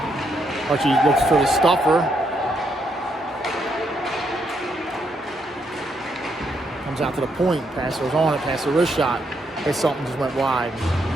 Hutchie looks for the stuffer. Comes out to the point. Passer's on it. Passer wrist shot. Hits something, just went wide.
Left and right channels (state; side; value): normal; both; correlation 0.76